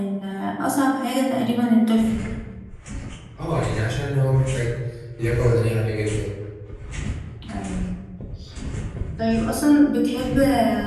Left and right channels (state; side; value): identical; both; correlation 1.00